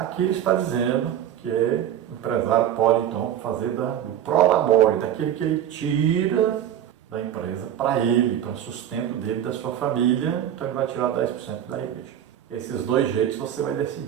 ele está dizendo que o empresário pode então fazer do prolabore, daquilo que ele tira da empresa para ele, para o sustento dele, da sua família, então ele vai tirar 10% da igreja. Esses dois jeitos você vai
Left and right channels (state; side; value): quieter; left; 10.5 dB